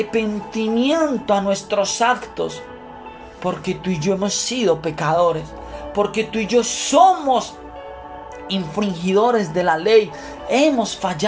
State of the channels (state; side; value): identical; both; correlation 1.00